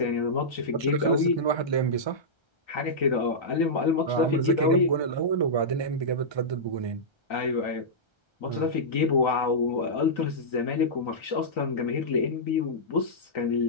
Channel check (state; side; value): late; right; 1.3 ms